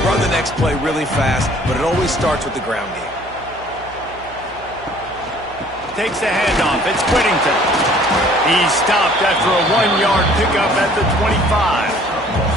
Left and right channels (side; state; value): right; noise; hum, 21 dB below the sound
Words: run the next play really fast, but it always starts with the ground game. Takes the handoff. It's Whittington. He's stopped after a 1-yard pickup at the 25.